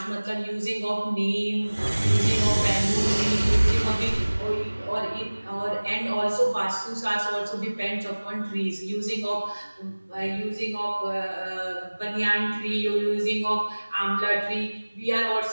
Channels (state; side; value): inverted; both; correlation -1.00